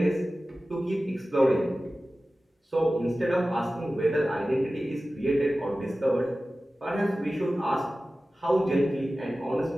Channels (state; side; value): normal; both; correlation 0.96